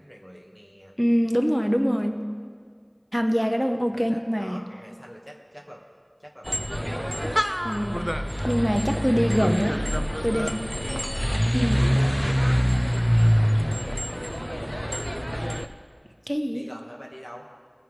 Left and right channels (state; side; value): identical; both; correlation 1.00